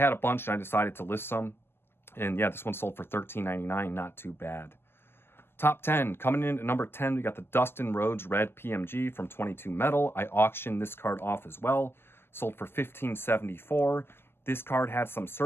a bunch and I decided to list some. And yeah, this one sold for $13.99, not too bad. Top 10, coming in at number 10, we got the Dustin Rhodes Red PMG from 22 Metal. I auctioned this card off as well. Sold for $15.74. This card had some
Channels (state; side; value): late; right; 0.11 ms